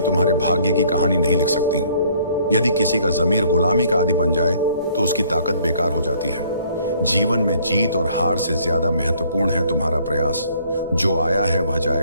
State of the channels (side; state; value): both; inverted; correlation -0.61